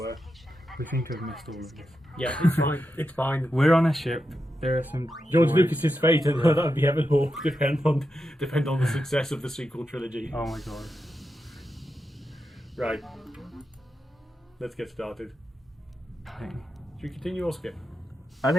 We seem to have missed all of this. Yeah, it's fine. It's fine. We're on a ship. There are some... George Lucas's fate and that would be heaven or depend on the success of the sequel trilogy. Oh my god. Right. Let's get started. Should we continue or skip? I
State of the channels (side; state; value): both; normal; correlation 0.87